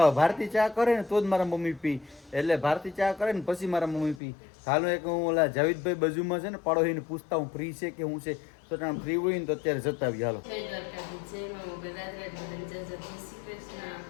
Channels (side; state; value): right; drops out; at 4.2 s